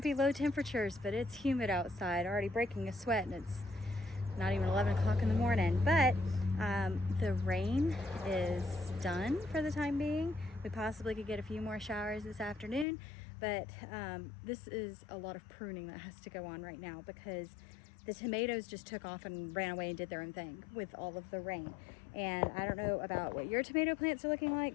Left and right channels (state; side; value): drops out; right; at 12.9 s